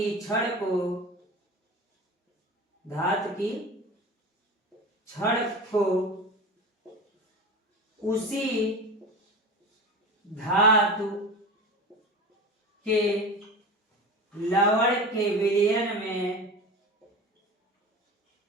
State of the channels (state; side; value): normal; both; correlation 0.31